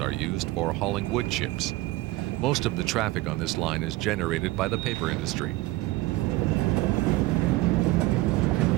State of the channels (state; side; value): quieter; left; 19.5 dB